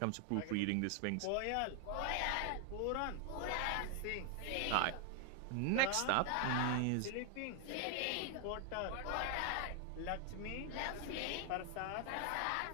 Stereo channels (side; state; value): both; different; correlation 0.00